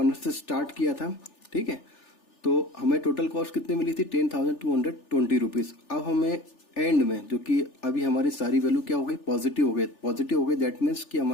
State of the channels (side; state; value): right; late; 3.4 ms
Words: से स्टार्ट किया था, ठीक है, तो हमें टोटल कॉस्ट कितनी मिली थी, 10,220 रुपीज। अब हमें एंड में, जो कि अभी हमारी सारी वैल्यू क्या हो गई, पॉजिटिव हो गई, दैट मीन्स कि